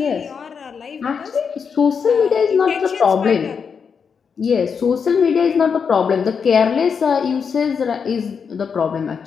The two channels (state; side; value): quieter; right; 6.2 dB